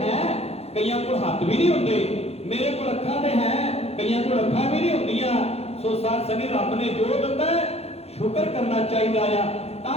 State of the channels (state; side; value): late; right; 0.30 ms